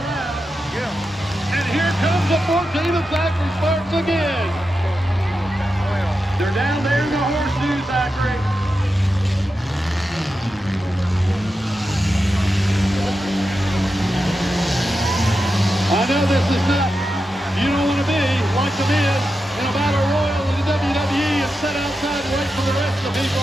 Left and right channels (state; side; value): normal; both; correlation 0.89